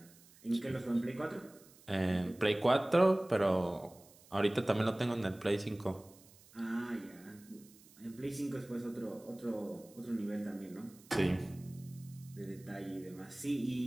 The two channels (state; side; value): noise; right; hiss, 25 dB below the sound